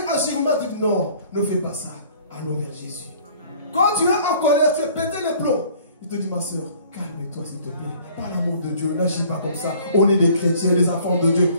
agir mal, dis non, ne fais pas ça. Allons vers Jésus. Quand tu es en colère, tu veux péter les plombs. Il te dit ma soeur, calme-toi s'il te plaît. Par l'amour de Dieu, n'agis pas comme ça. On est des chrétiens, des enfants de Dieu.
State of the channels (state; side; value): inverted; both; correlation -0.54